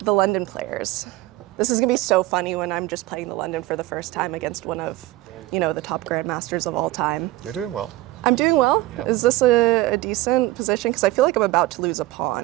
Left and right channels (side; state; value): left; quieter; 17.7 dB